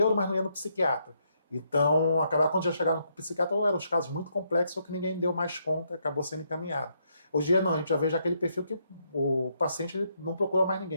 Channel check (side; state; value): both; inverted; correlation -0.76